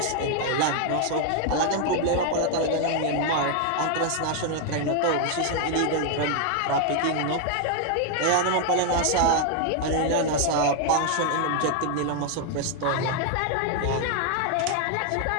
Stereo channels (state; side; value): different; both; correlation 0.00